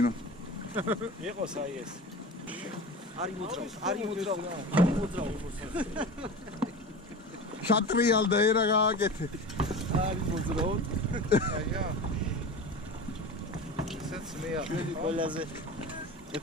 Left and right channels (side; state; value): both; normal; correlation 0.32